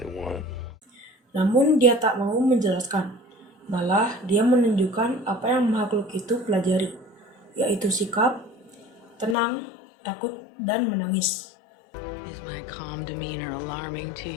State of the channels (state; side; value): drops out; right; at 9.3 s